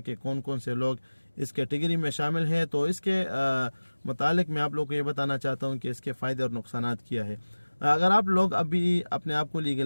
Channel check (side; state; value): both; inverted; correlation -1.00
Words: कौन कौन से लोग इस कैटेगरी में शामिल हैं। तो इसके मुतालिक मैं आप लोगों को ये बताना चाहता हूँ कि इसके फ़ायदे और नुकसानात क्या है। अगर आप लोग अभी अपने आप को